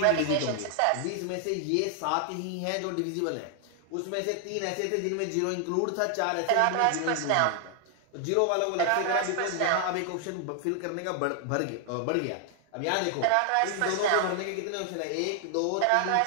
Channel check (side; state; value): both; different; correlation 0.00